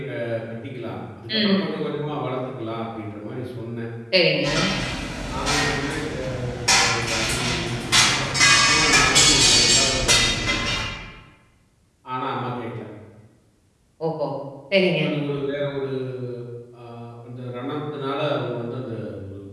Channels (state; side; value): identical; both; correlation 1.00